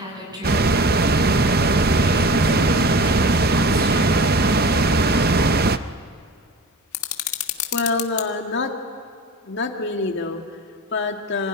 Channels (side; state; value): both; normal; correlation 0.37